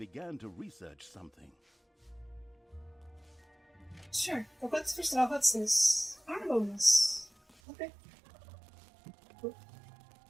to research something. Sure. But first of all, what's this? Armor bonus. Okay. Cool.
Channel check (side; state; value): left; drops out; at 7.6 s